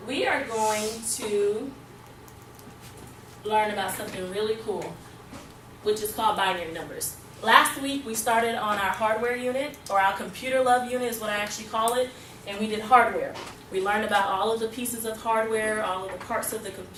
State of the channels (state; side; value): identical; both; correlation 1.00